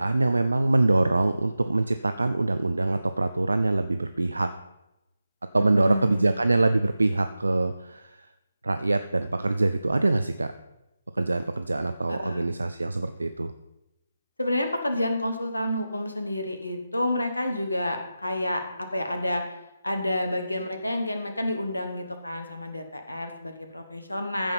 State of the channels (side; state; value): both; inverted; correlation -0.93